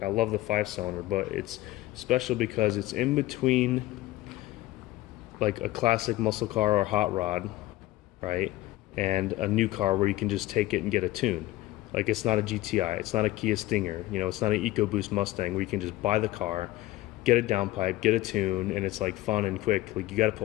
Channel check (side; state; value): right; quieter; 17.3 dB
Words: I love the 5-cylinder, but it's special because it's in between like a classic muscle car or hot rod, right? And a new car where you can just take it and get a tune. Like, it's not a GTI, it's not a Kia Stinger, it's not an EcoBoost Mustang where you can just buy the car, get a downpipe, get a tune, and it's like fun and quick. Like, you got to